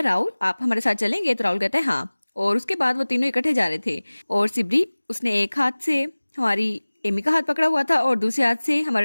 राहुल आप हमारे साथ चलेंगे। तो राहुल कहता है हाँ। और उसके बाद वो तीनों इकट्ठे जा रहे थे और सिबरी उसने एक हाथ से हमारी एमी का हाथ पकड़ा हुआ था और दूसरे हाथ से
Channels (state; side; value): inverted; both; correlation -1.00